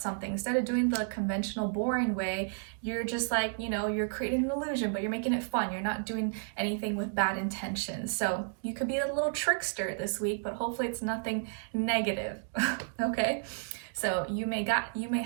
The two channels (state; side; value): silent; left; digital silence